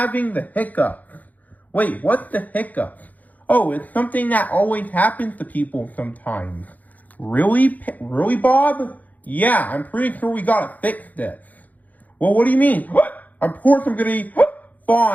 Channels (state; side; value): late; right; 0.079 ms